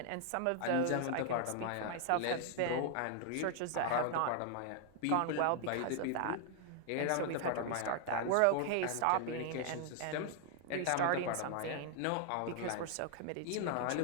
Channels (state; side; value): different; both; correlation 0.00